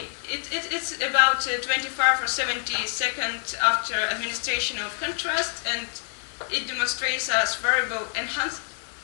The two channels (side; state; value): right; silent; 61 dB below the other